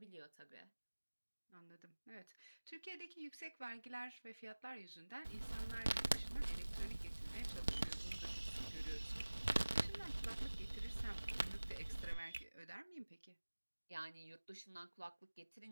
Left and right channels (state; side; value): inverted; both; correlation -1.00